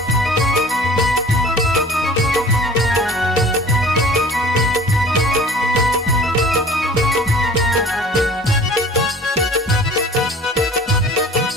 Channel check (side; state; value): both; normal; correlation 0.46